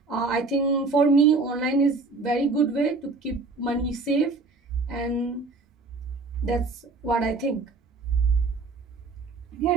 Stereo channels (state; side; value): quieter; left; 3.8 dB